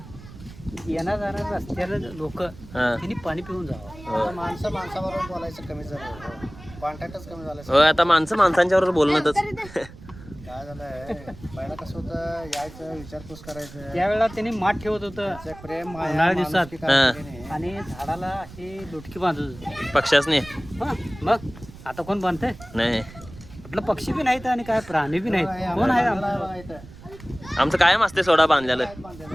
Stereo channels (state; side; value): noise; right; rumble, 17 dB below the sound